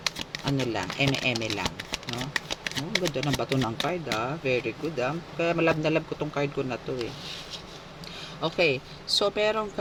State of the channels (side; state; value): both; identical; correlation 1.00